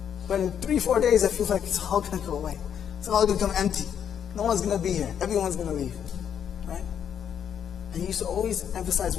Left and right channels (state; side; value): quieter; right; 8.6 dB